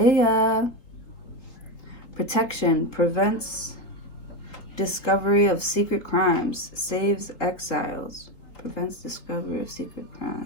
Protection. Prevents discovery of secret crimes. Saves exiles. Prevents discovery of secret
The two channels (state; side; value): late; right; 3.8 ms